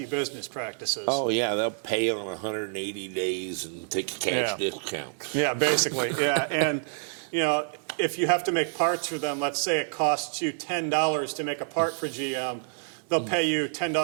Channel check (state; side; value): silent; left; digital silence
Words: business practices. Oh, yeah, they'll pay on 180 days and take a cash discount. Yeah, basically, yeah. And, if you have to make parts for them, let's say it costs you $10 to make a part for GM, they'll pay you